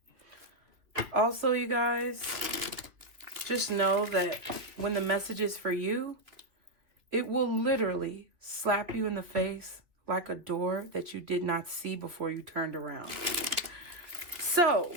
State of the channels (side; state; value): left; late; 2.5 ms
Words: Also, you guys, just know that when the message is for you, it will literally slap you in the face like a door that you did not see before you turned around. So